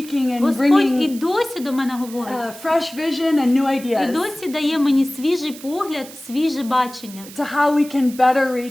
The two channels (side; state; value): right; noise; hiss, 17 dB below the sound